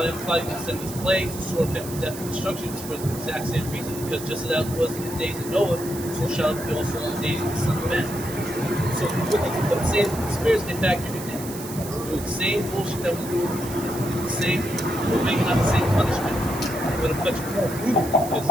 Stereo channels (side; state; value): right; noise; hiss, 12 dB below the sound